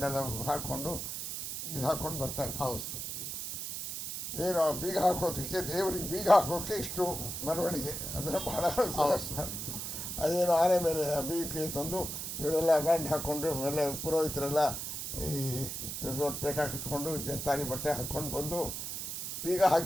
ಎಲ್ಲ ಹಾಕ್ಕೊಂಡು ಇದು ಹಾಕ್ಕೊಂಡು ಬರ್ತಾರೆ. ಹೌದು ಸರ್. ಏನು ಬೀಗ ಹಾಕೋದಕ್ಕೆ, ದೇವರಿಗೆ ಬೀಗ ಹಾಕೋಕ್ಕೆ ಇಷ್ಟು ಮೆರವಣಿಗೆ. ಅದನ್ನು ಭಾಳ ಅದೇನು ಆನೆ ಮೇಲೆ ಬೀಗ ತಂದು ಇವರೆಲ್ಲ ಬ್ಯಾಂಡ್ ಹಾಕ್ಕೊಂಡು ಎಲ್ಲ ಪುರೋಹಿತರೆಲ್ಲ ಈ ದೊಡ್ಡ ಪೇಟ ಕಟ್ಕೊಂಡು ತಾರಿ ಬಟ್ಟೆ ಹಾಕ್ಕೊಂಡು ಬಂದು ಬೀಗ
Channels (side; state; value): right; noise; hiss, 5 dB below the sound